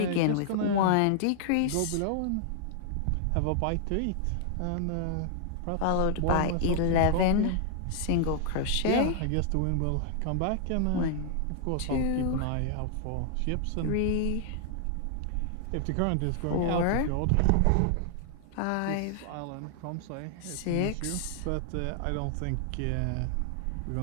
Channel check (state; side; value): different; both; correlation -0.01